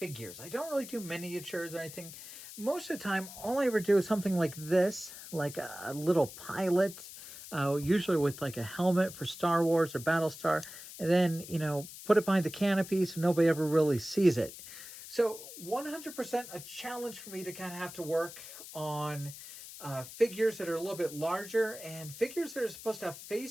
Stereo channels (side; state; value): left; noise; hiss, 13 dB below the sound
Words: I don't really do miniatures or anything. Most of the time, all I ever do is something like this, like a little pilot, usually with like a helmet for Star Wars or Battlestar, and then, you know, put it behind the canopy so nobody ever really sees it. So 100% a challenge for me to kind of have to work on figures that are a little bit larger and figures that are supposed to have